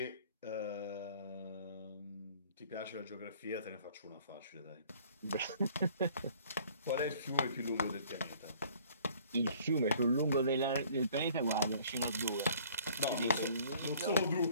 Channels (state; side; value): inverted; both; correlation -0.55